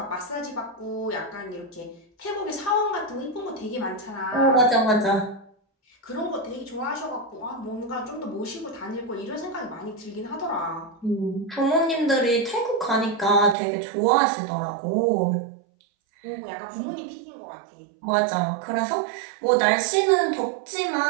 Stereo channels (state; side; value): drops out; left; at 13.6 s